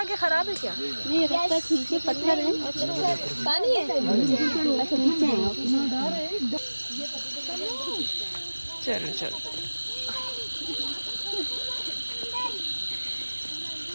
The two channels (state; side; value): inverted; both; correlation -1.00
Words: खराब है क्या? नहीं, रास्ता ठीक है, पत्थर है। पानी है। अच्छा नीचे है। चलो